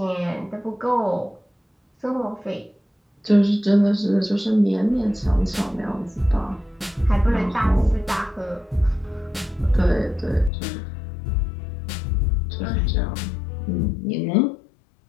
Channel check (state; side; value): drops out; right; at 10.5 s